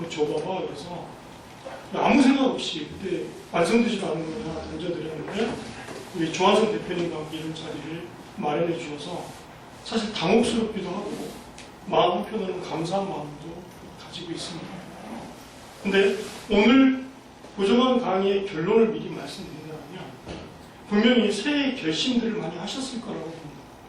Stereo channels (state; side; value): identical; both; correlation 1.00